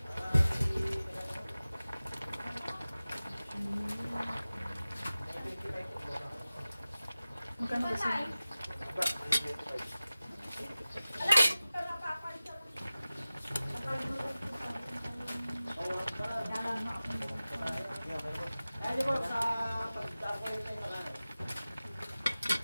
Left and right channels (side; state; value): both; inverted; correlation -0.96